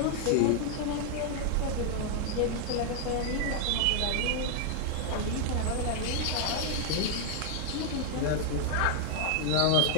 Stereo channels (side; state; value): both; different; correlation 0.00